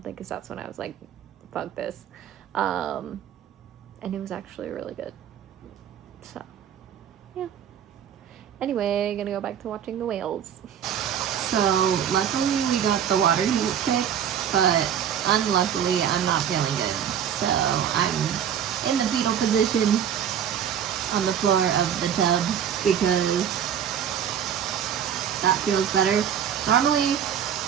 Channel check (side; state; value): left; quieter; 9.0 dB